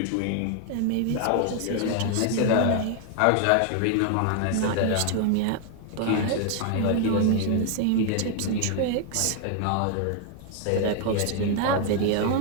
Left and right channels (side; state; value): both; different; correlation 0.00